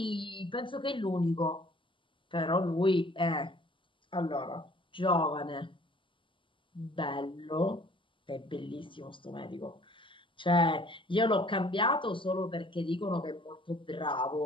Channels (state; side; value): late; right; 0.25 ms